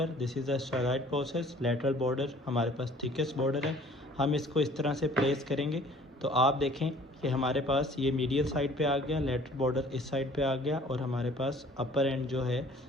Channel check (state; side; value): normal; both; correlation 0.53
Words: this is the styloid process, lateral border हमारे पास थिकेस्ट बॉर्डर है। हम इसको इस तरह से प्लेस करेंगे तो आप देखें कि हमारे पास ये मीडियल साइड पे आ गया, लेटरल बॉर्डर इस साइड पे आ गया, और हमारे पास अपर एंड जो है